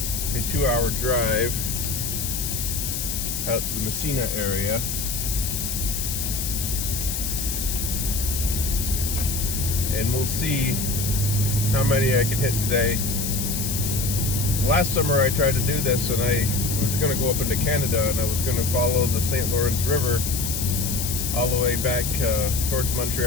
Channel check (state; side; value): noise; left; hiss, 3 dB below the sound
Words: 2-hour drive out to the Messina area. And we'll see how many I can hit today. Last summer I tried to do this, and I was going to go up into Canada, and I was going to follow the St. Lawrence River all the way back towards